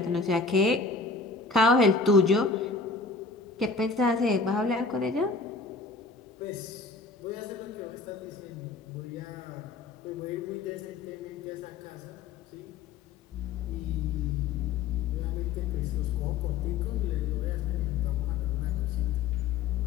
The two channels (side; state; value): right; quieter; 4.5 dB